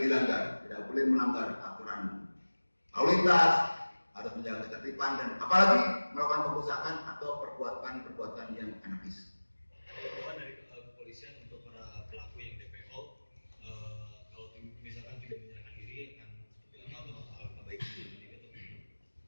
dilanggar, tidak boleh melanggar aturan lalu lintas, harus menjaga ketertiban dan apalagi melakukan pengusahaan atau perbuatan yang anarkis. Dari kepolisian untuk para pelaku yang DPO, kalau misalkan tidak menyerahkan diri akan seperti apa atau alangkah baiknya gitu?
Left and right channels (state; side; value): inverted; both; correlation -1.00